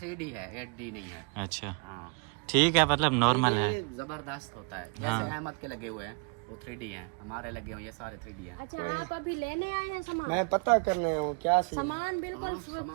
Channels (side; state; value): left; quieter; 34.4 dB